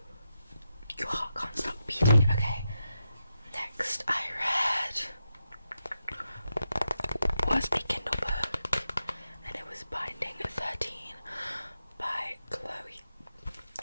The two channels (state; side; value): inverted; both; correlation -0.86